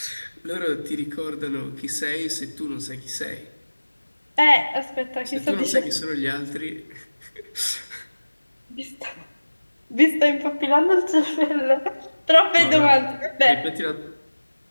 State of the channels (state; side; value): inverted; both; correlation -1.00